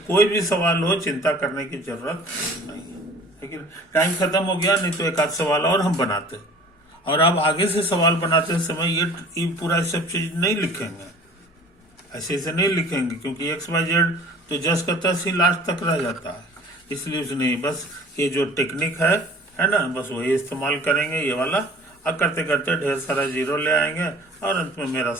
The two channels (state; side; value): normal; both; correlation 0.47